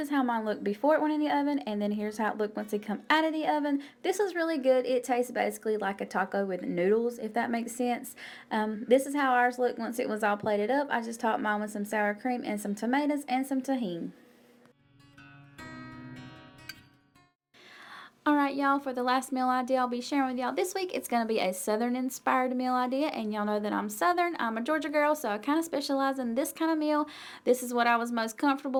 how mine looked before it went in the oven, and then here's how it looked once it come out of the oven. This is really good. It tastes basically like a taco with noodles, if that makes sense. This is how ours looked once it was all plated up. I just topped mine with some sour cream and some tomatoes and some tahini. Alright y'all, for the last meal idea I'll be sharing with y'all this week, it's going to be a southern inspired meal idea, and y'all know that I'm southern. I'm a Georgia girl, so I kind of specialize in this kind of meal. This is what I was most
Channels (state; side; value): identical; both; correlation 1.00